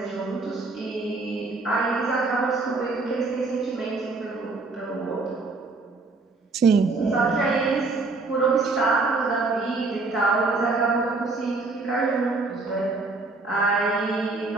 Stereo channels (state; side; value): quieter; left; 3.7 dB